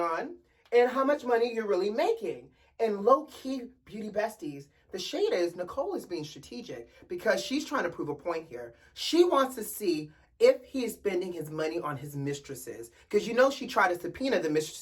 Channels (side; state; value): both; identical; correlation 1.00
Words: and how much money you're really making. And low-key, beauty besties, the shade is Nicole is being strategic because she's trying to prove a point here. She wants to see if he is spending his money on his mistresses. Because you know she tried to subpoena the